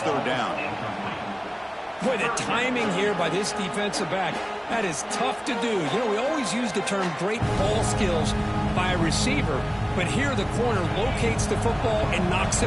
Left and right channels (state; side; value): identical; both; correlation 1.00